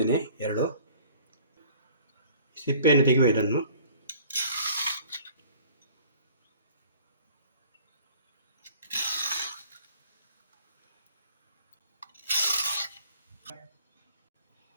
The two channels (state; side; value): inverted; both; correlation -0.51